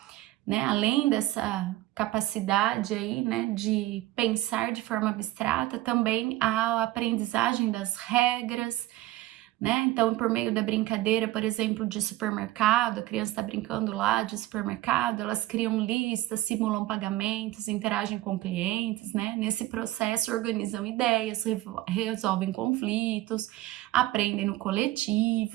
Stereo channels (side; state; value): left; quieter; 16.3 dB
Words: né, além dessa capacidade aí, né, de pensar de forma abstrata, também há a aprendizagem das regras, né? Então, por meio da brincadeira, por exemplo, de supermercado, a criança está brincando lá de supermercado, elas criam listas, simulam pagamentos, interagem com clientes, né? Nesse processo, organizam ideias, resolvem conflitos, aprendem no